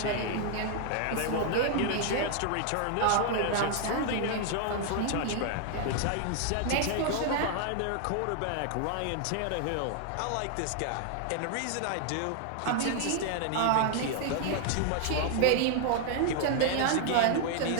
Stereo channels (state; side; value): different; both; correlation 0.00